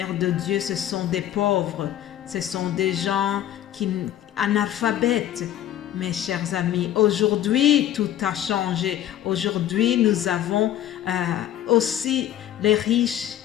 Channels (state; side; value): quieter; right; 11.8 dB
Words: de Dieu, ce sont des pauvres, ce sont des gens analphabètes. Mes chers amis, aujourd'hui, tout a changé. Aujourd'hui, nous avons aussi les riches